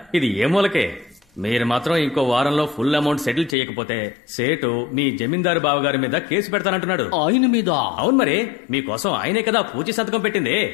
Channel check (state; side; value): drops out; right; at 3.6 s